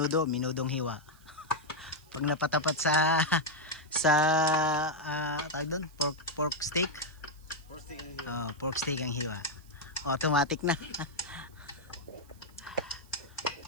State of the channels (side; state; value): right; noise; hiss, 28 dB below the sound